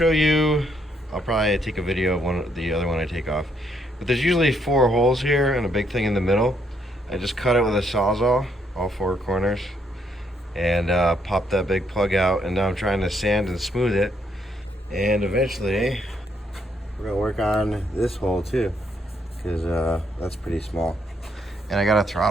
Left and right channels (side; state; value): both; normal; correlation 0.72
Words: you. I'll probably take a video of the other one I take off. But there's usually 4 holes here and a big thing in the middle. I just cut it with a sawzall, all 4 corners, and pop that big plug out. And now I'm trying to sand and smooth it. And eventually, we're gonna work on this hole too, because that's pretty small. And I got a